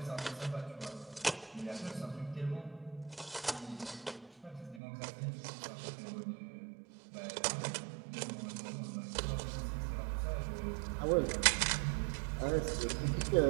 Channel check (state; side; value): drops out; left; at 4.8 s